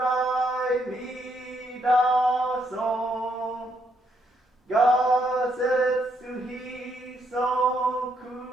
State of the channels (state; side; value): normal; both; correlation 0.75